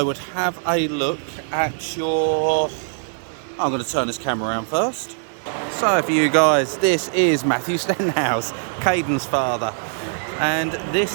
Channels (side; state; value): left; silent; digital silence